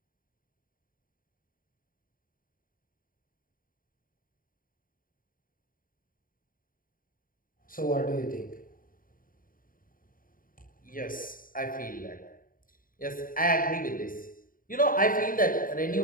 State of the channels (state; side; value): late; right; 0.41 ms